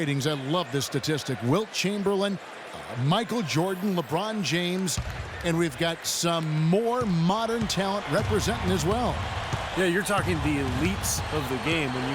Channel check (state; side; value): identical; both; correlation 1.00